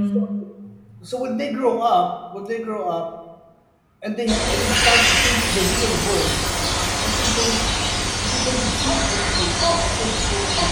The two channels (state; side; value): identical; both; correlation 1.00